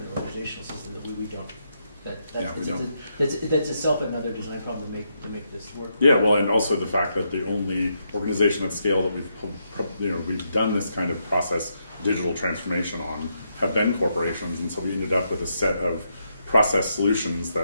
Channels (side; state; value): both; inverted; correlation -0.80